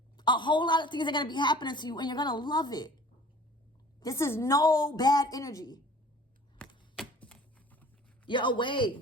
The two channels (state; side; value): normal; both; correlation 0.47